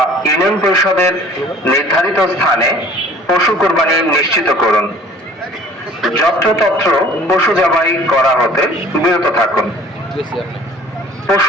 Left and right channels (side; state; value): both; normal; correlation 0.50